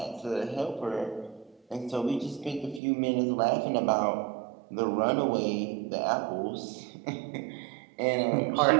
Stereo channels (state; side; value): drops out; left; at 2.8 s